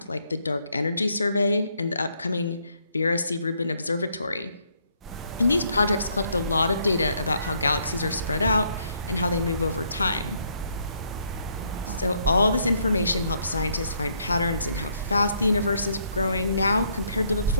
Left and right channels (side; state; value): both; inverted; correlation -0.70